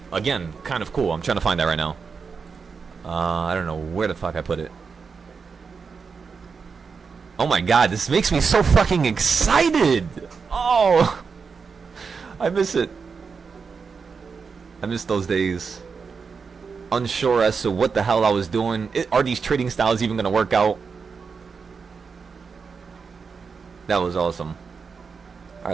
again, kind of cool. I'm trying to find that right now. I don't know where the fuck I put it. Oh my god, this makes me so fucking excited! Oh! I miss it. I miss those days. Unsure as to what the hell I was doing. Are these trading styles even gonna work out? That was awesome.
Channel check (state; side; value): quieter; left; 5.4 dB